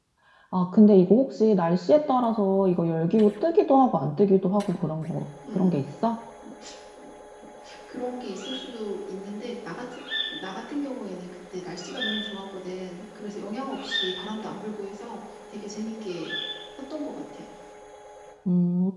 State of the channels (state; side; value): identical; both; correlation 1.00